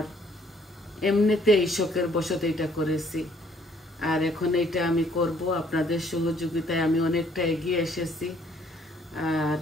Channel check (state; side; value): normal; both; correlation 0.63